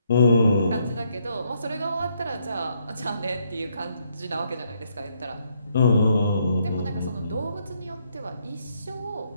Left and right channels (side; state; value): both; inverted; correlation -0.73